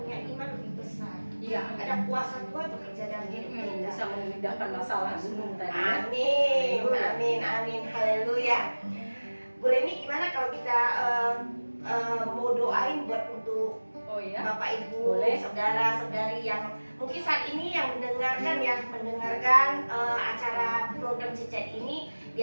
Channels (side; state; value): both; inverted; correlation -1.00